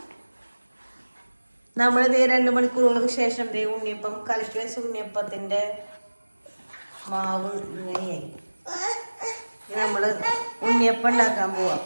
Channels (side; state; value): both; inverted; correlation -1.00